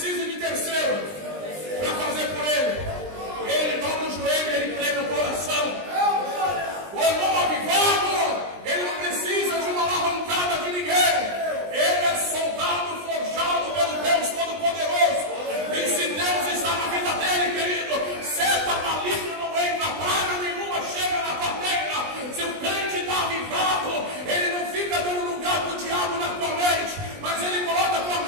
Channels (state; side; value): late; left; 20 ms